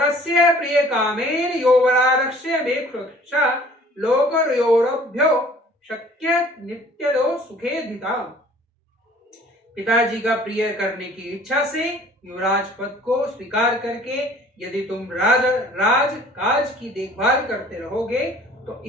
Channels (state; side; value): normal; both; correlation 0.52